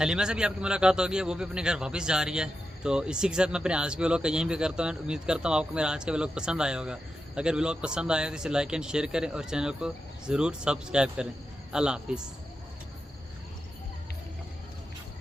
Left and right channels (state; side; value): normal; both; correlation 0.89